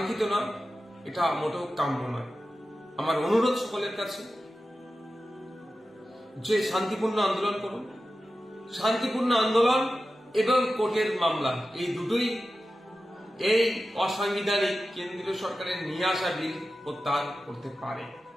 না, এটা মোটেও কাম্য নয়। আমার অনুরোধ সকলের কাছে যে শান্তিপূর্ণ আন্দোলন করুন। শান্তিপূর্ণ আন্দোলন এবং কোর্টের মামলা এই দুটোই এই অসাংবিধানিক কেন্দ্রীয় সরকারের নিয়ে আসা বিল প্রত্যাহার করতে পারে।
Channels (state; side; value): normal; both; correlation 0.93